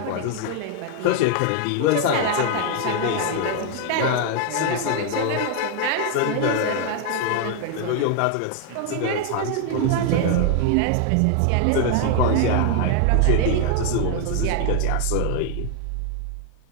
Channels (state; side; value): different; both; correlation 0.00